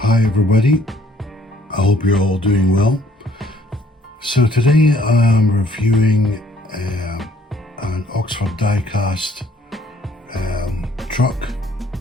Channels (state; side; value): normal; both; correlation 0.62